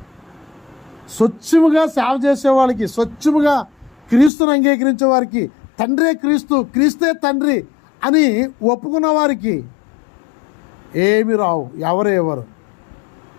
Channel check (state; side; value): drops out; right; at 4.3 s